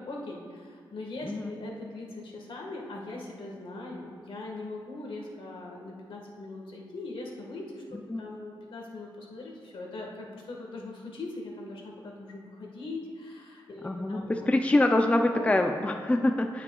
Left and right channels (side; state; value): both; normal; correlation 0.90